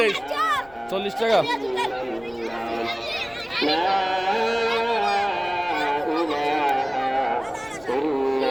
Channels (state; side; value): noise; left; rumble, 25 dB below the sound